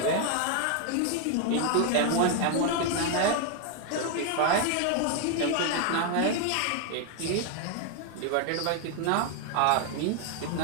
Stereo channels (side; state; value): both; different; correlation 0.01